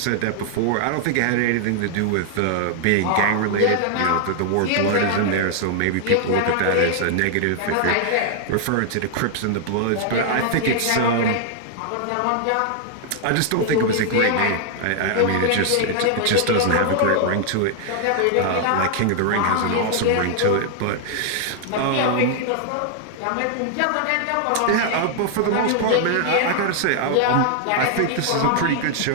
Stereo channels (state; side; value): different; both; correlation 0.00